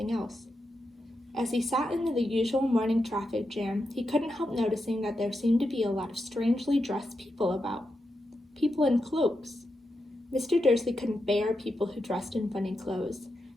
else. As he sat in the usual morning traffic jam, he couldn't help noticing that there seemed to be a lot of strangely dressed people about. People in cloaks. Mr. Dursley couldn't bear people who dressed in funny clothes,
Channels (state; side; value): normal; both; correlation 0.87